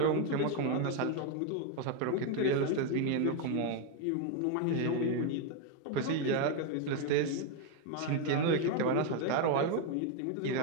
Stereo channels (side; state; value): both; different; correlation 0.01